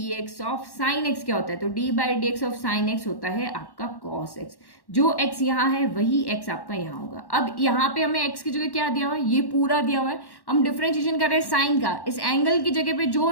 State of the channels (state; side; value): late; right; 1.1 ms